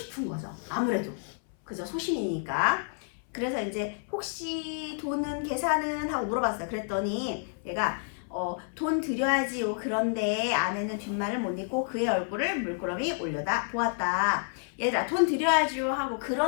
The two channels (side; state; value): right; silent; 58 dB below the other